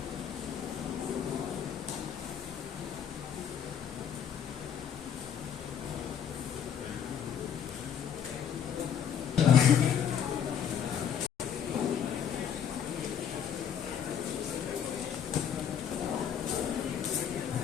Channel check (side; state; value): right; quieter; 8.3 dB